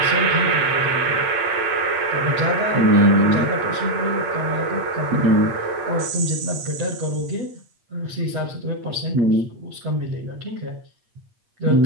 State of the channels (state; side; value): late; left; 8.4 ms